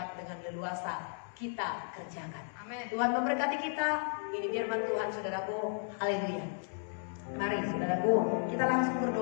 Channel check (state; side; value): silent; right; 55 dB below the other